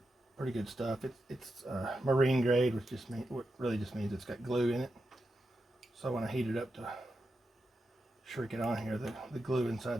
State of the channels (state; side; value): normal; both; correlation 0.88